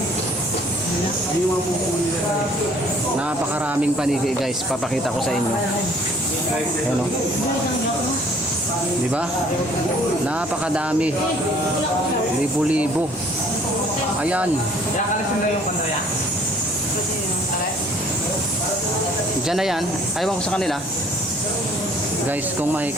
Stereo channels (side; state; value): left; noise; rumble, 26 dB below the sound